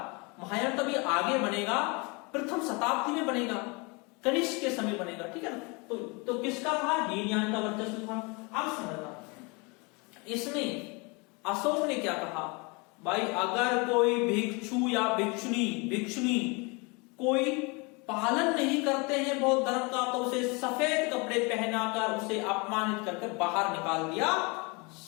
महायान तो अभी आगे बनेगा, प्रथम शताब्दी में बनेगा, कनिष्क के समय बनेगा। ठीक है ना? तो किसका था? हीनयान का वर्चस्व था। अब समझना, इसमें अशोक ने क्या कहा भाई? अगर कोई भिक्षु या भिक्षुनी कोई पालन नहीं करते हैं बौद्ध धर्म का, तो उसे सफेद कपड़े पहनाकर उसे अपमानित करके बाहर निकाल दिया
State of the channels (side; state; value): right; quieter; 29.3 dB